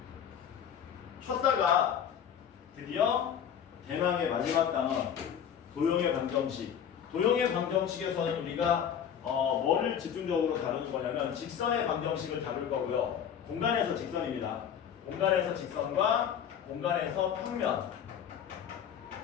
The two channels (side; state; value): right; quieter; 8.6 dB